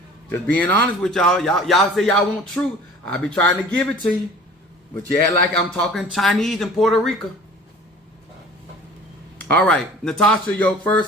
Just being honest with y'all. Y'all say y'all want truth. I be trying to give it to you. But you act like I'm talking Chinese in Puerto Rico. All right, Natasha, your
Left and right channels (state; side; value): normal; both; correlation 0.46